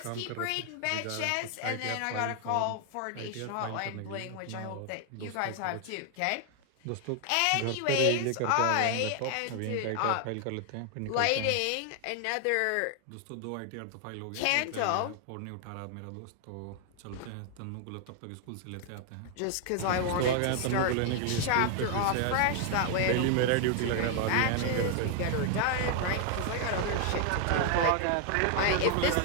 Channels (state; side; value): different; both; correlation 0.00